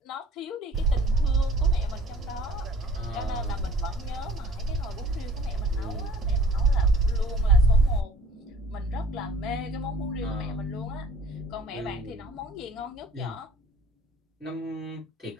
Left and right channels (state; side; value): normal; both; correlation 0.51